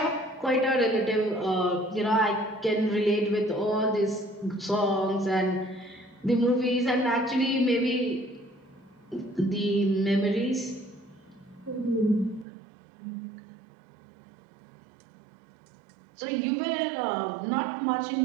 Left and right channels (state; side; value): drops out; left; at 12.5 s